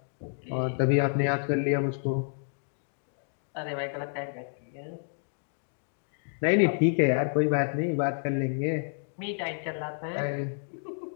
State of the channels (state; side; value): silent; right; digital silence